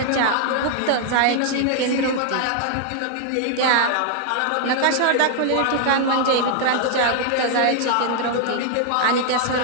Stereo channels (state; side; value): different; both; correlation 0.00